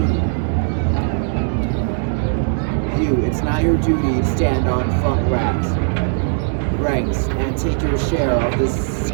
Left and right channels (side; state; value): left; silent; digital silence